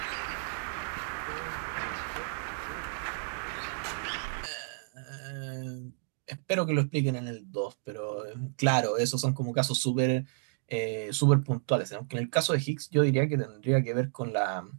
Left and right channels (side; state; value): left; silent; digital silence